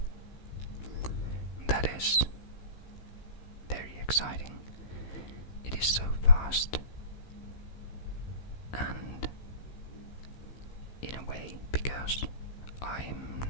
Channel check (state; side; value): late; right; 15 ms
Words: that is very exciting. It is so fast, and in a way, because I'm